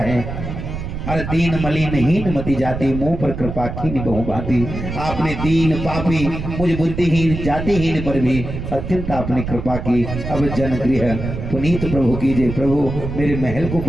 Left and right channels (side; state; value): right; noise; rumble, 6 dB below the sound